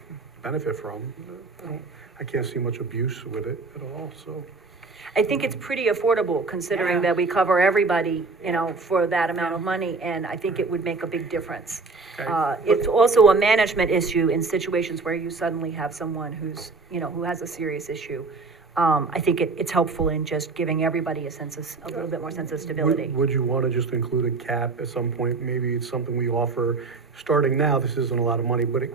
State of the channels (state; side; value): quieter; left; 4.0 dB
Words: benefit from. I can't see much abuse with it at all, so. I think it's pretty affordable considering that we cover everybody, you know, for that amount of money, and I think it would make a big difference. Okay. It's also a management issue in situations where you suddenly have someone who's, you know, who has a serious issue. I think it's helpful in just giving everybody a little bit more sense of stability. Would you wanna just include a cap at some point? Maybe it's something we offer, starting now, this isn't a lot of money, but